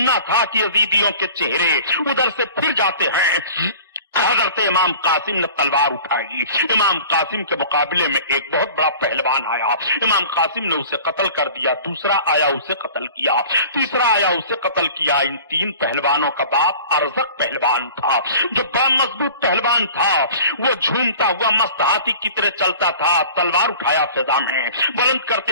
تھا کہ یزیدیوں کے چہرے ادھر سے پھر جاتے ہیں. حضرت امام قاسم نے تلوار اٹھائی. امام قاسم کے مقابلے میں ایک بہت بڑا پہلوان آیا. امام قاسم نے اسے قتل کر دیا. دوسرا آیا اسے قتل کیا. تیسرا آیا اسے قتل کیا. ان تین پہلوانوں کا باپ ارزق پہلوان تھا جو بڑا مضبوط پہلوان تھا. وہ جھومتا ہوا مست ہاتھی کی طرح چلتا تھا. تلوار اٹھایا فضا میں, بلند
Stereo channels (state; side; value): inverted; both; correlation -0.43